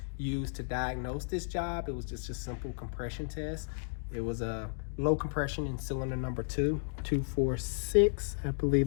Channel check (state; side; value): silent; right; digital silence